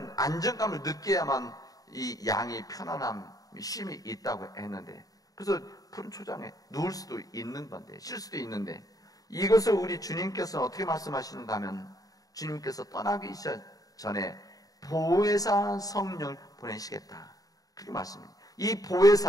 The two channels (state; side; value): late; right; 0.18 ms